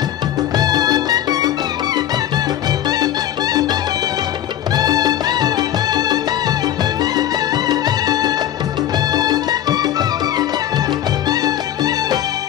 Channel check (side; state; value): right; quieter; 11.6 dB